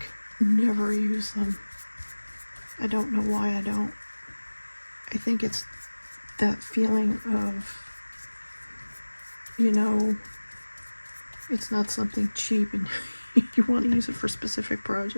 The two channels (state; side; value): inverted; both; correlation -1.00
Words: never use them. I don't know why I don't. I think it's that feeling of, you know, it's not something cheap and you want to use it for specific